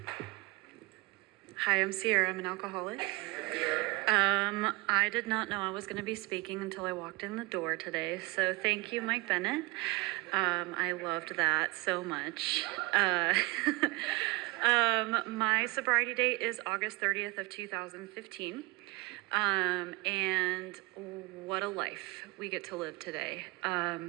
Hi, I'm Siera. I'm an alcoholic. I did not know I was going to be speaking until I walked in the door today, so thank you, Mike Bennett. I loved that so much. My sobriety date is August 30th of 2015, and what a life we get to live today.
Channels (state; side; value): quieter; left; 24.1 dB